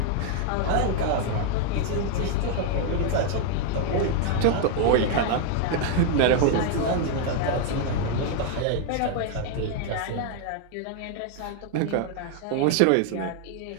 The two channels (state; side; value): different; both; correlation 0.00